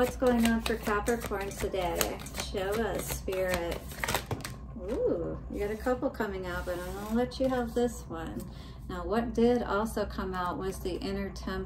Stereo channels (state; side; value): identical; both; correlation 1.00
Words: going on for Capricorn today? Show us, Spirit. Ooh, you got a couple coming out, but I'm gonna let you have this one. Now, what did also come out was the inner